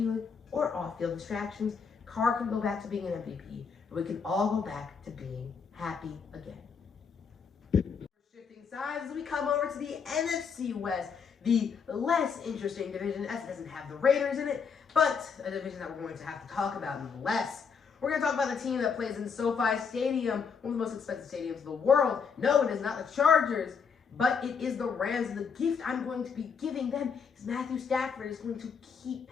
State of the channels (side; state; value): right; quieter; 6.0 dB